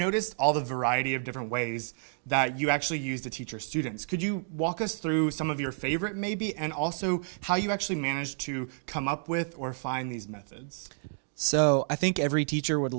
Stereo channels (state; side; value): silent; left; digital silence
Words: all the variety of different ways that you actually use to teach your students. Could you walk us through some of your favorite maybe, and also how you actually managed to come up with or find these methods? So I think every teacher would